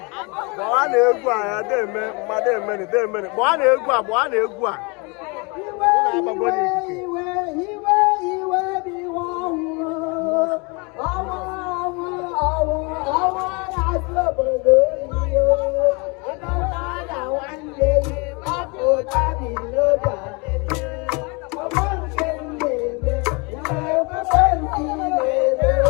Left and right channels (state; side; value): quieter; right; 30.2 dB